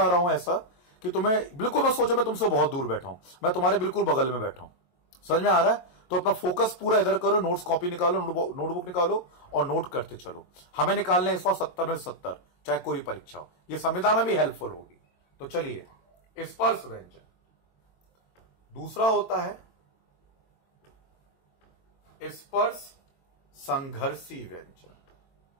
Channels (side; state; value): right; late; 22 ms